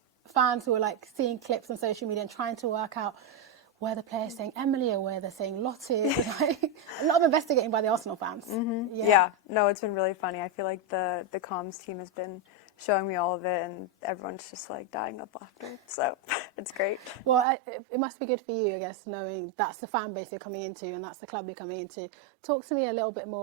fans who were like seeing clips on social media and trying to work out where the player's saying Emily or where they're saying Lotte. Like, a lot of investigating by the Arsenal fans. Mm-hmm. Yeah. No, it's been really funny. I feel like the comms team has been showing me all of it, and everyone's just like dying of laughter. So it's great. Well, it must be good for you, I guess, knowing that's the fan base you're coming into and that's the club you're coming into. Talk to me a little bit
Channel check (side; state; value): left; drops out; at 17.4 s